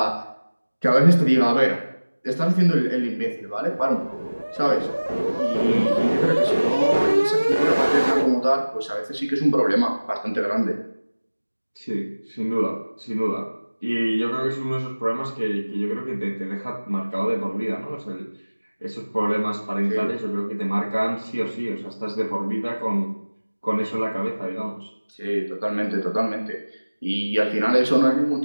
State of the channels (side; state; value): both; inverted; correlation -1.00